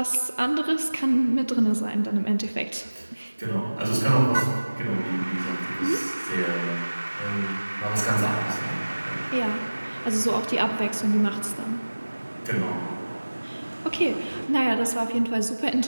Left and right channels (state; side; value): inverted; both; correlation -1.00